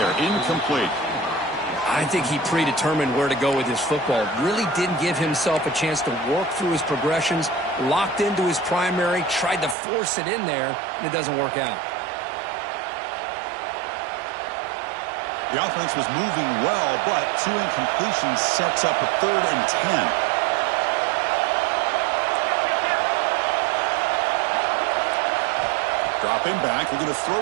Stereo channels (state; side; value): drops out; left; at 9.8 s